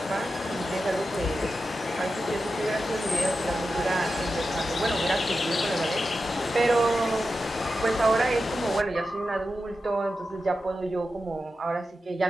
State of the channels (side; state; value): both; normal; correlation 0.91